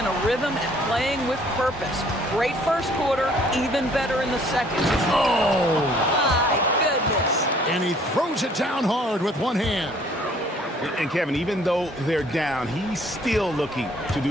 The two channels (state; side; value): normal; both; correlation 0.59